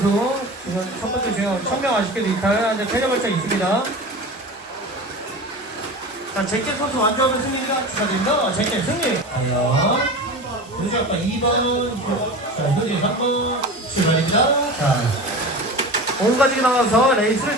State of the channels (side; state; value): both; normal; correlation 0.32